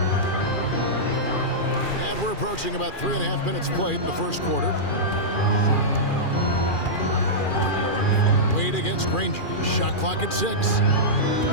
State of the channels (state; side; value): late; right; 2.4 ms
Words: And we're approaching about 3.5 minutes played in the first quarter. Wade against Granger. Shot clock at 6.